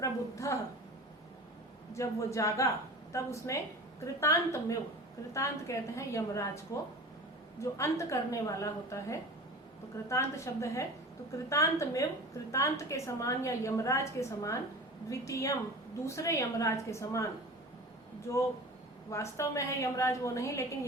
जब वो जागा तब उसने कृतांतमेव, कृतांत कहते हैं यमराज को, जो अंत करने वाला होता है, तो कृतांत शब्द है। तो कृतांतमेव, कृतांत के समान या यमराज के समान, द्वितीयम, दूसरे यमराज के समान, जो वास्तव में है यमराज वो नहीं, लेकिन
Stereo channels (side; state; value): both; normal; correlation 0.35